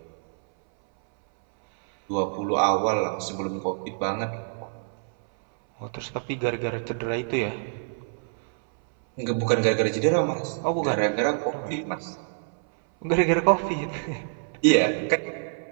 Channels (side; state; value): left; silent; 61 dB below the other